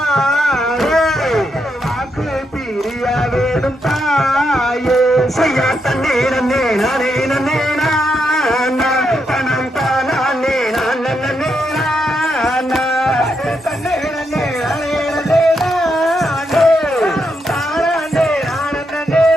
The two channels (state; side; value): normal; both; correlation 0.81